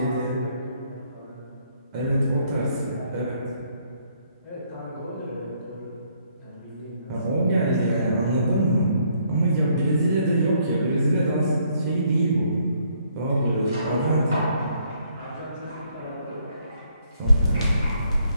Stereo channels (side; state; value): both; inverted; correlation -0.69